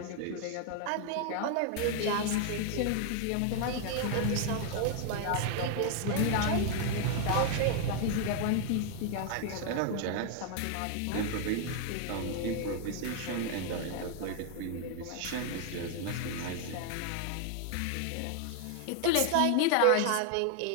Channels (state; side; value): different; both; correlation 0.00